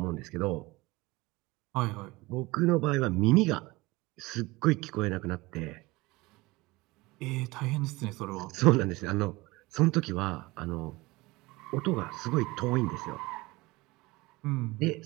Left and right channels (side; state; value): left; quieter; 21.8 dB